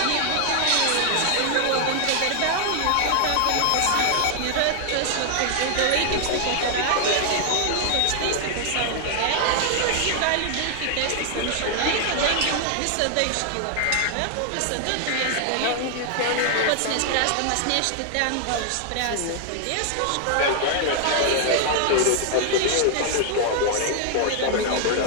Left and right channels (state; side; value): different; both; correlation 0.00